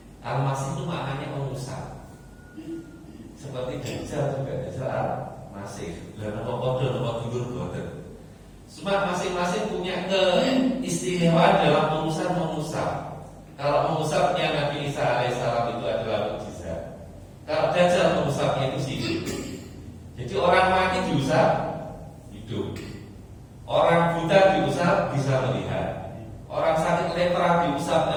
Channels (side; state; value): both; identical; correlation 1.00